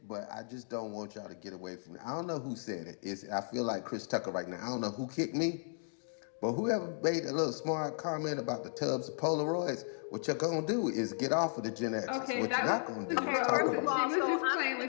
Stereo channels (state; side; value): silent; right; digital silence